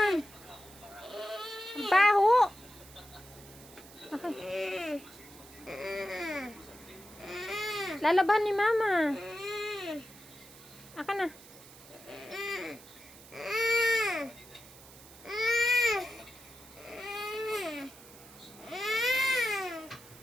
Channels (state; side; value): noise; right; hiss, 20 dB below the sound